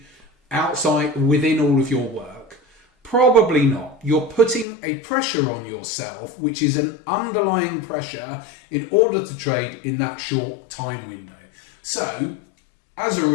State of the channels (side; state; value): right; drops out; at 4.7 s